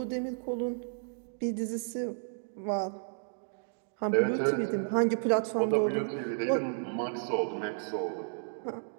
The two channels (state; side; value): silent; left; digital silence